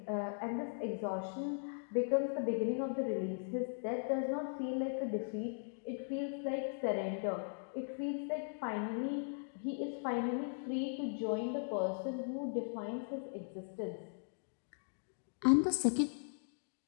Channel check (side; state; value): right; silent; digital silence